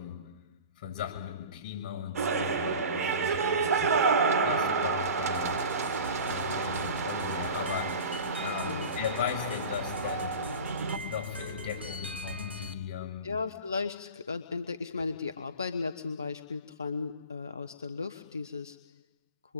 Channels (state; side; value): inverted; both; correlation -0.35